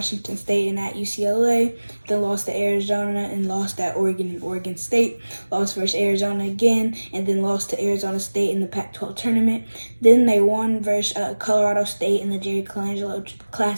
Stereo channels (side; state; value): both; inverted; correlation -1.00